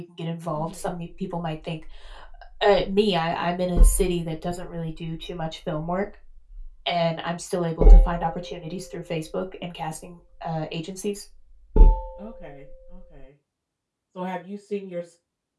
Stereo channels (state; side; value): identical; both; correlation 1.00